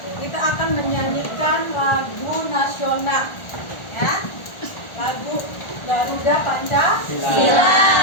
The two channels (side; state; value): right; late; 1.4 ms